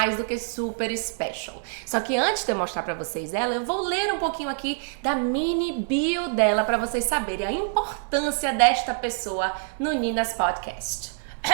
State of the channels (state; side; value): silent; left; digital silence